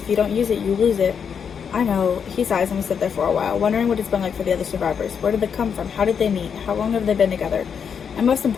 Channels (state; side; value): quieter; right; 7.0 dB